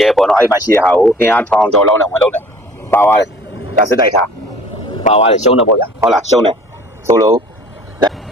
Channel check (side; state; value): both; normal; correlation 0.50